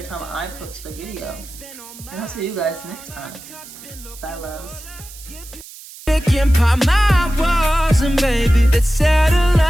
time I post a video. And I'll see you guys next time. Bye, loves. My walls and baby, let's settle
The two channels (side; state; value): right; noise; hiss, 17 dB below the sound